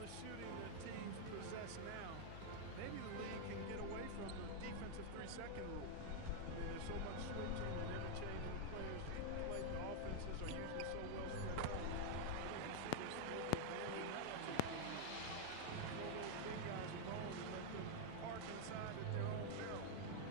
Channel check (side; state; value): both; different; correlation 0.00